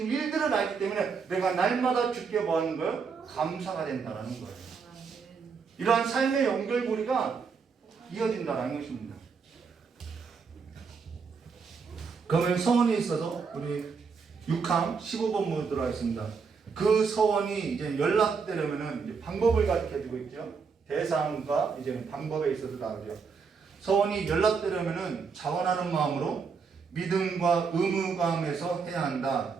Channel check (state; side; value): quieter; left; 5.5 dB